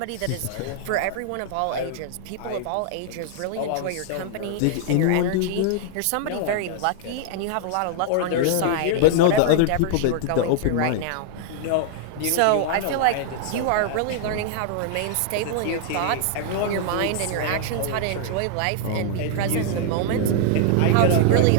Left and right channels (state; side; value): different; both; correlation -0.01